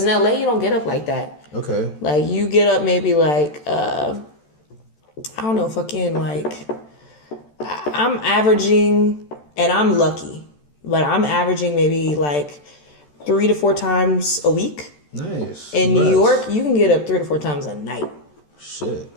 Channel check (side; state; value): right; late; 13 ms